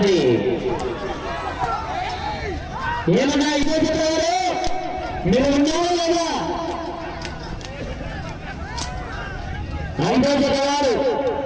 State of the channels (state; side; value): identical; both; correlation 1.00